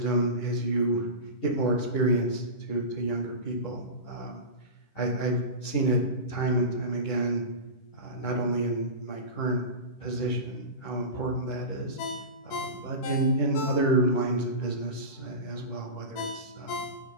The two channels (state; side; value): late; right; 10 ms